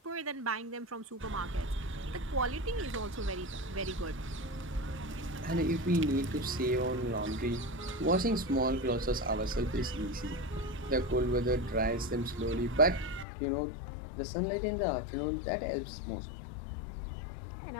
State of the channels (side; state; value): right; drops out; at 13.2 s